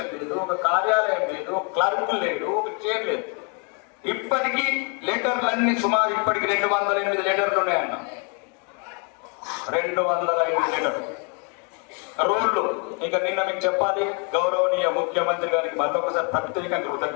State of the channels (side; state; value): right; quieter; 36.8 dB